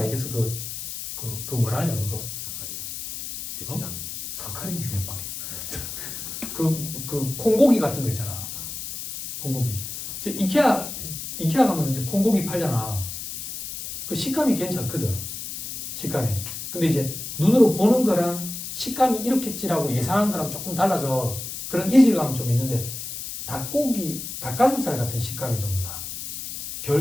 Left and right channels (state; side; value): noise; left; hiss, 7 dB below the sound